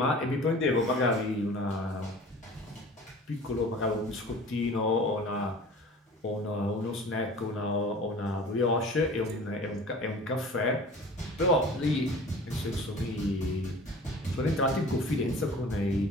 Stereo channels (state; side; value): normal; both; correlation 0.43